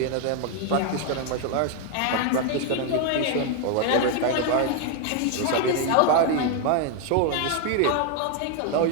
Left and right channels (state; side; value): different; both; correlation 0.00